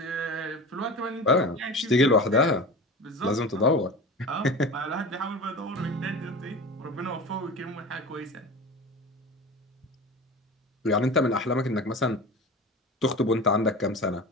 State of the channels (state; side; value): normal; both; correlation 0.32